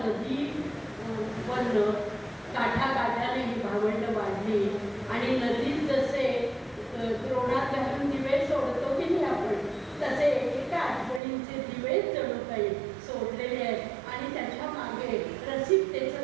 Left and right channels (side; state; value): left; drops out; at 11.2 s